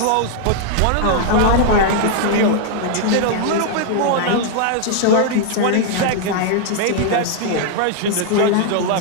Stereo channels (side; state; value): both; different; correlation 0.00